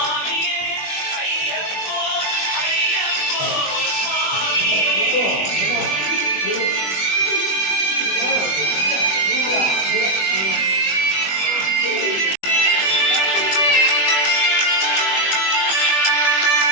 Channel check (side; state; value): right; late; 20 ms